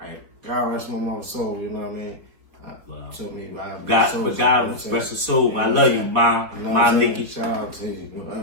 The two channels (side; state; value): left; late; 4.3 ms